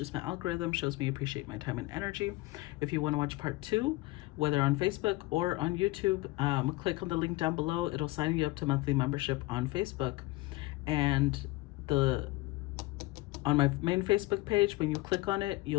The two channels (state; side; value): quieter; right; 20.6 dB